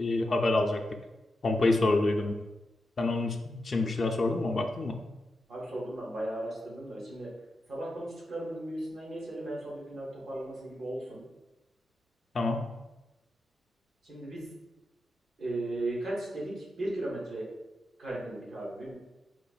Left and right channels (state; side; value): normal; both; correlation 0.88